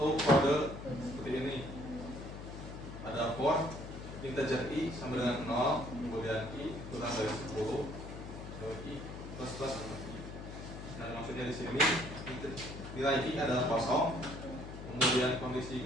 kode seperti ini. Ada for integer i sama dengan 0, kemudian i kurang dari 10, i plus plus atau i. Nah, maksudnya di sini nilai i adalah kosong. Kemudian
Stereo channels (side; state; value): left; noise; hum, 10 dB below the sound